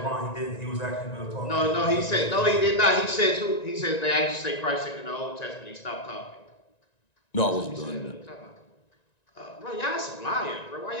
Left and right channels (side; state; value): right; late; 1.9 ms